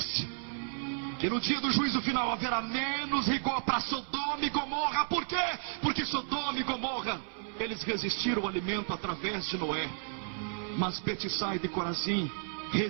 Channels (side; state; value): left; silent; 56 dB below the other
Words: que no dia do juízo final haverá menos rigor para Sodoma e Gomorra. Por quê? Porque Sodoma e Gomorra, eles resistiram ao alimento através de Noé. Mas Betsaida e Corazim